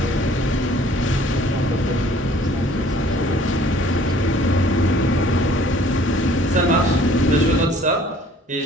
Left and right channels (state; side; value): normal; both; correlation 0.55